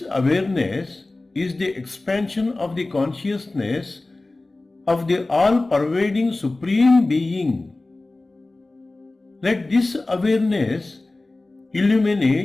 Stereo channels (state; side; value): quieter; right; 3.0 dB